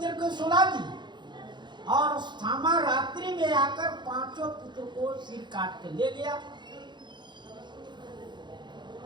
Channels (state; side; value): late; left; 0.22 ms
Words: को सुला दिए और अश्वत्थामा रात्रि में आकर 5 पुत्र को सिर काट के ले गया।